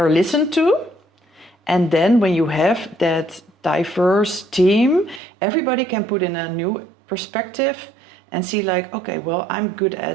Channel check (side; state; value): left; drops out; at 5.2 s